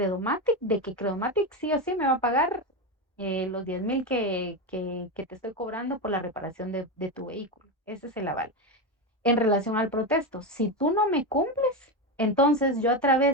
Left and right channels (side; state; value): both; normal; correlation 0.14